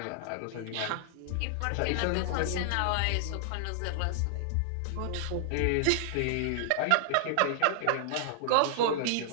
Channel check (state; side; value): different; both; correlation 0.00